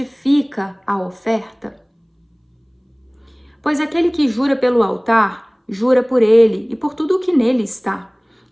a oferta? Pois aquele que jura pelo altar, jura por ele e por tudo o que nele está.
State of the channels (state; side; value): identical; both; correlation 1.00